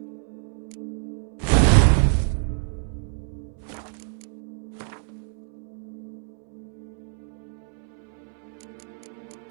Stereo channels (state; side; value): silent; left; 60 dB below the other